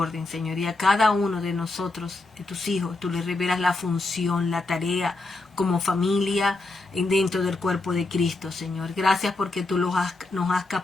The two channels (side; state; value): right; quieter; 3.2 dB